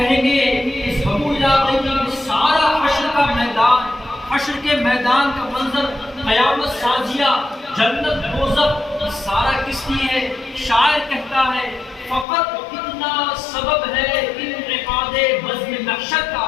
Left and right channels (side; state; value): right; drops out; at 12.2 s